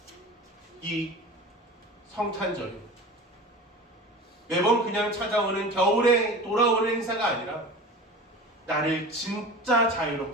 이 성탄절이 매번 그냥 찾아오는 겨울에 돌아오는 행사가 아니라 나를 진짜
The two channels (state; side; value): normal; both; correlation 0.35